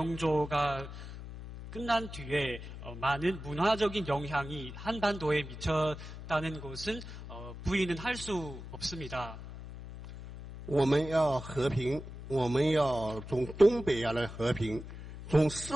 끝난 뒤에 많은 문화적인 영향이 한반도에 미쳤다는 것은 부인은 할 수 없습니다. 我们要和平，我们要从东北亚来和平，从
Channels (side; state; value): left; noise; hum, 11 dB below the sound